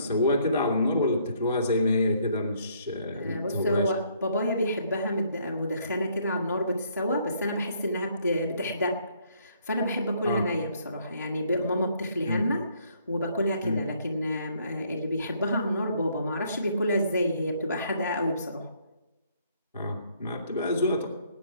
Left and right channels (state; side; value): inverted; both; correlation -0.67